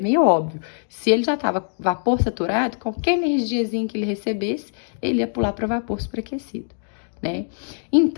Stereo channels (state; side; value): silent; right; digital silence